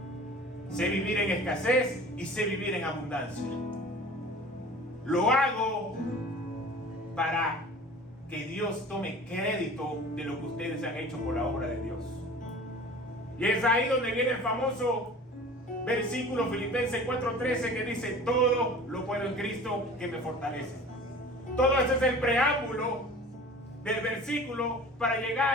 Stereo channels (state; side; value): normal; both; correlation 0.42